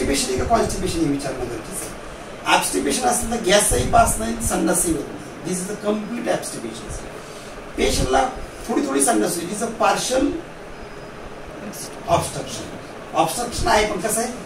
आहे का कॉन्स्टिपेशन हे विचारणं गरजेचं आहे. ऍब्स्टिपेशन असेल तर गॅसही पास नाही, संडासही होत नाही. दिस इज अ कम्प्लीट ऍब्स्टिपेशन. पेशंटला थोडी संडास होती, तिचं पार्शल ऑब्स्ट्रक्शन आहे, पण कसं आहे,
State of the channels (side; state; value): both; identical; correlation 1.00